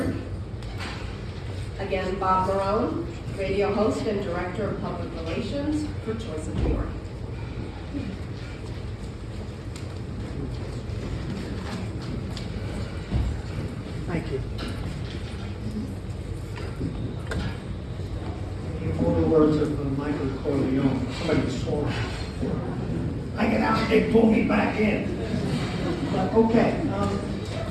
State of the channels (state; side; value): identical; both; correlation 1.00